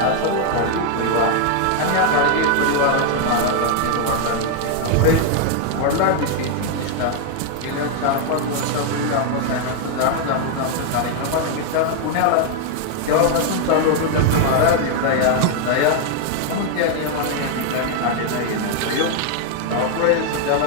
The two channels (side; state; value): both; different; correlation 0.00